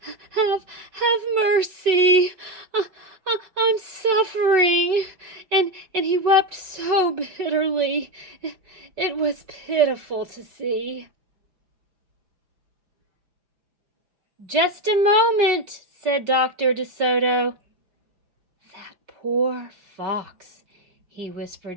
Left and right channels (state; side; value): late; left; 5.4 ms